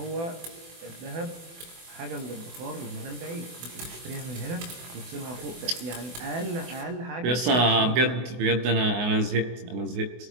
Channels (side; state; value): left; late; 24 ms